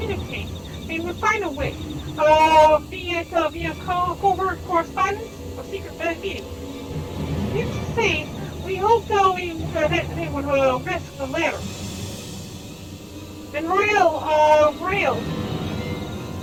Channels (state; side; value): identical; both; correlation 1.00